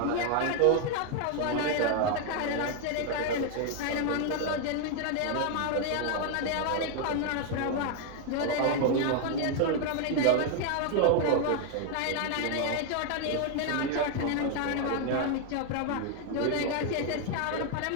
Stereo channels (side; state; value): both; different; correlation 0.00